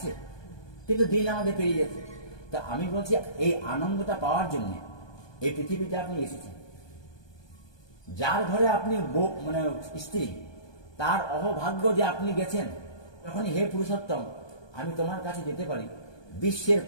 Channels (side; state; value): right; late; 1.2 ms